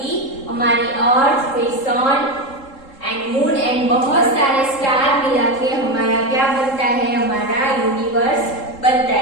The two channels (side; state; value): right; late; 3.7 ms